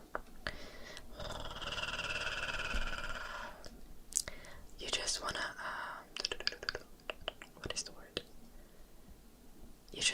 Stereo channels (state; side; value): identical; both; correlation 1.00